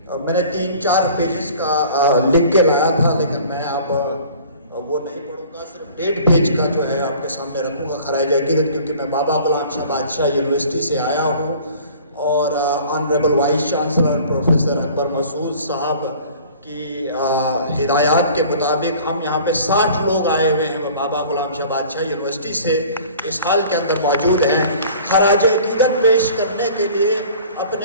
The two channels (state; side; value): inverted; both; correlation -0.48